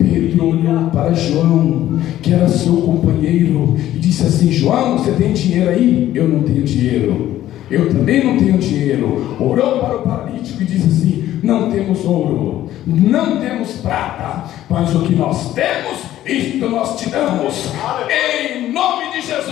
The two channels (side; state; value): right; quieter; 13.2 dB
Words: olhou para João, que era seu companheiro, e disse assim: João, você tem dinheiro aí? Eu não tenho dinheiro. Eu também não tenho dinheiro. Orou para o paralítico e disse assim: não temos ouro, não temos prata, mas o que nós temos, isto nós te damos. Em nome de